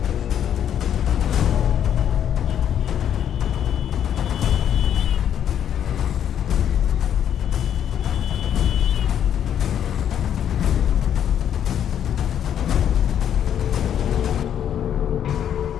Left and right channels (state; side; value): quieter; right; 9.5 dB